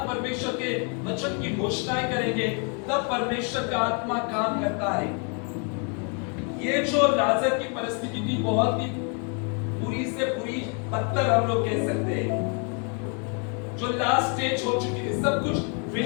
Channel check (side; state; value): right; quieter; 38.3 dB